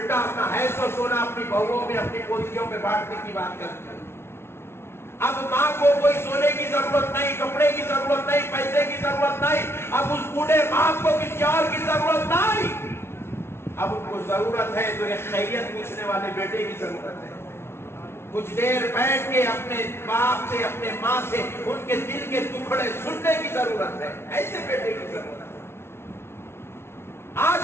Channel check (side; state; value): right; late; 0.12 ms